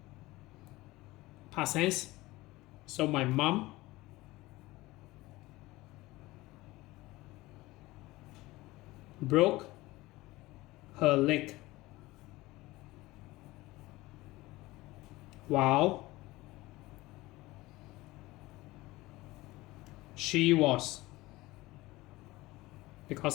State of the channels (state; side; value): quieter; right; 19.5 dB